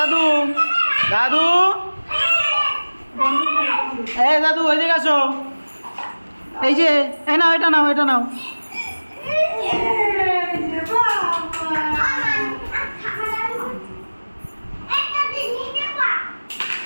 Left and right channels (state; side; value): inverted; both; correlation -1.00